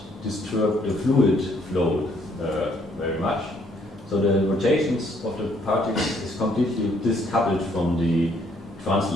disturb the fluid flow very much. So the rotations of the particles is completely discoupled from the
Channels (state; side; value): normal; both; correlation 0.67